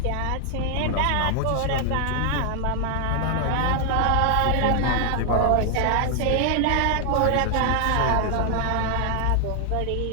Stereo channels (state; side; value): different; both; correlation 0.00